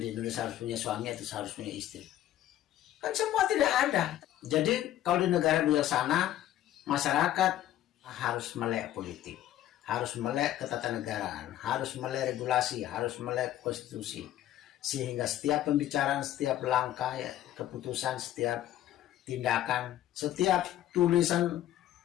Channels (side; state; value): right; quieter; 13.0 dB